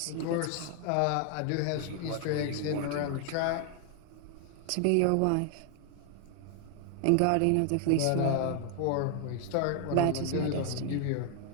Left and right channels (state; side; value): different; both; correlation 0.00